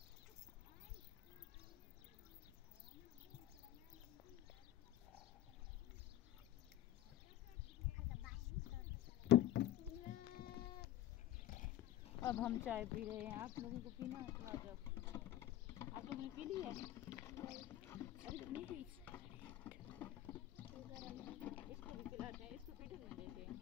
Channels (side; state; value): right; quieter; 13.4 dB